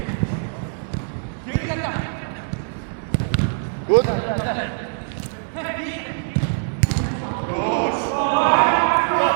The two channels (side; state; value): left; silent; digital silence